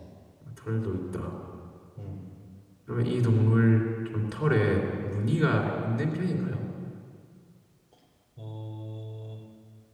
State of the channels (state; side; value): identical; both; correlation 1.00